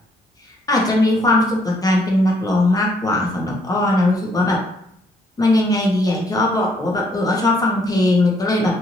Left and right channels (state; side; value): normal; both; correlation 0.69